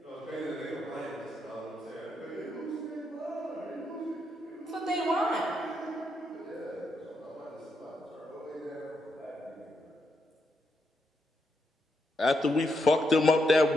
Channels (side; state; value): both; normal; correlation 0.80